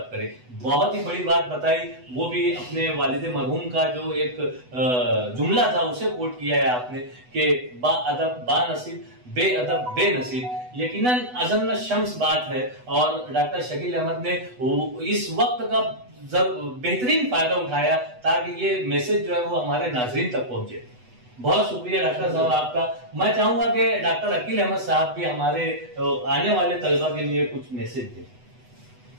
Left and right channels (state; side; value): late; left; 8.1 ms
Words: करें। बहुत ही बड़ी बात बताई, वो भी अपने वालिद मरहूम का जो एक जुमला था उसे कोट किया है आपने कि बा अदब बा नसीब, बे अदब बे नसीब। यकीनन अज़म शम्स बात है, और डॉक्टर शकील अहमद ने इस वक्त का बेहतरीन फायदा उठाया ताकि ये मैसेज जो है वो हमारे नाज़रीन तक पहुंचे। बहुत शुक्रिया डॉक्टर साहब आपका। मैं चाहूंगा कि डॉक्टर अकील अहमद साहब भी हमारे आने वाले तलबा के लिए कुछ मैसेज